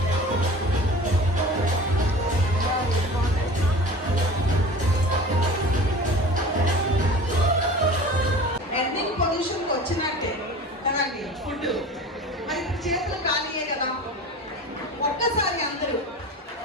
ఎండింగ్ పొజిషన్కి వచ్చినట్టే కదండి ఫుడ్. మరి ఇప్పుడు చేతులు ఖాళీయే కదా. ఒక్కసారి అందరూ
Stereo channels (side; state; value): both; normal; correlation 0.38